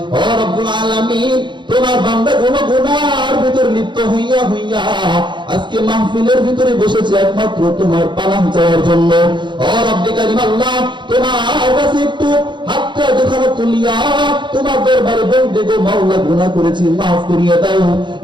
ও রব্বুল আলামিন, তোমার বান্দাগুলো গুনার ভিতর লিপ্ত হইয়া হইয়া আজকে মাহফিলের ভিতরে বসেছে একমাত্র তোমার পানাহ চাওয়ার জন্য। ও রব্বি কারীম আল্লাহ, তোমার কাছে একটু হাতটা যখন তুলিয়া তোমার দরবারে বলবে গো মাওলা, গুনাহ করেছি, মাফ করিয়ে দাও,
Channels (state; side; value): late; left; 0.23 ms